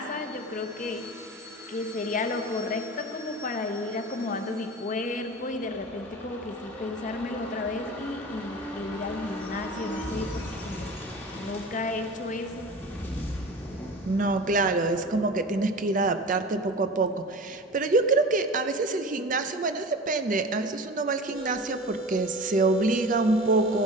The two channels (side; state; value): both; normal; correlation 0.35